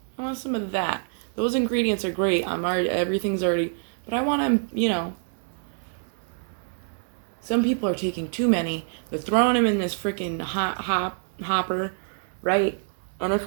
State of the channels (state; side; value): silent; left; digital silence